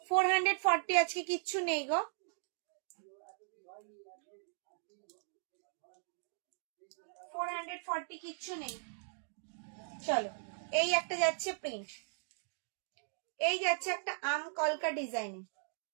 440 আজকে কিচ্ছু নেই গো, 440 কিচ্ছু নেই। চলো এই একটা যাচ্ছে প্রিন্ট, এই যাচ্ছে একটা আম কলকা ডিজাইনে,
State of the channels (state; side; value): silent; left; digital silence